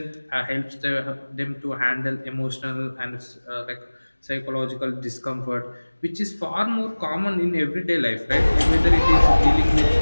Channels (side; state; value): both; inverted; correlation -1.00